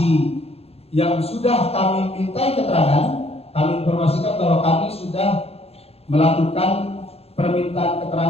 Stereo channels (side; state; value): right; late; 0.29 ms